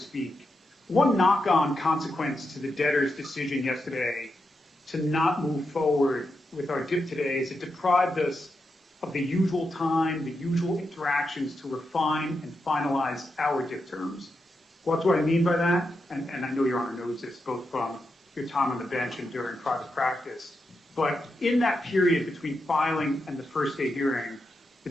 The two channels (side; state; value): both; normal; correlation 0.86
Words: One knock-on consequence to the debtor's decision yesterday to not move forward with our DIP today is it deprived us of the usual time, the usual interactions to refine and finalize our DIP terms. What's what I mean by that? And I know Your Honor knows this, both from your time on the bench and during private practice. But in that period between filing and the first day hearing, the